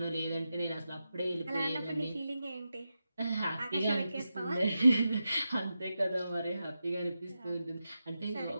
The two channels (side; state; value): both; inverted; correlation -0.90